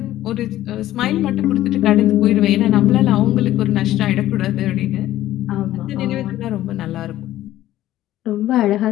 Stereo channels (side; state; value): right; quieter; 14.1 dB